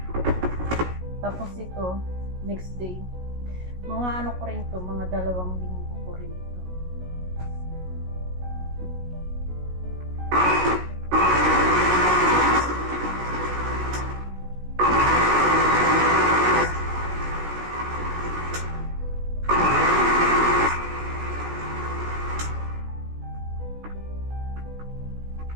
Tapos ito, next day. Mga ko rin to, mga 2 linggo ko rin ito.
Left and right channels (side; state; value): left; late; 16 ms